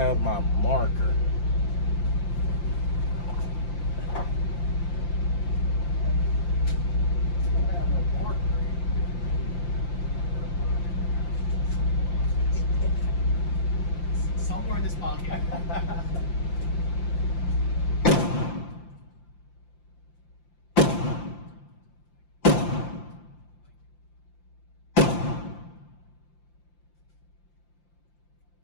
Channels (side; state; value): right; late; 5.8 ms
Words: my marker. Somewhere in this pocket.